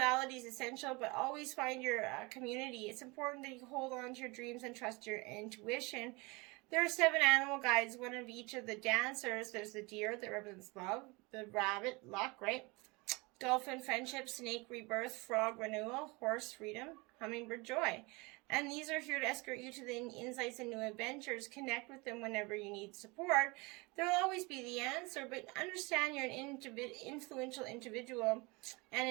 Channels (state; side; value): quieter; left; 26.2 dB